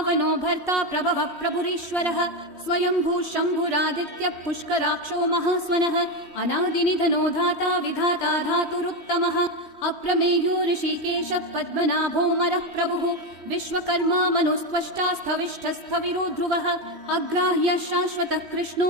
भर्ता प्रभवः प्रभुरीश्वरः स्वयंभू शम्भुरादित्यः पुष्कराक्षो महास्वनः अनादिनिधनो धाता विधाता धातुरुत्तमः अप्रमेयो ऋषिकेशः पद्मनाभोऽमरः प्रभुः विश्वकर्मा मनुस्त्वष्टा स्थविष्ठस्थविरो ध्रुवः अग्राह्यः शाश्वतः कृष्णो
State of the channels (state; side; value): late; left; 3.1 ms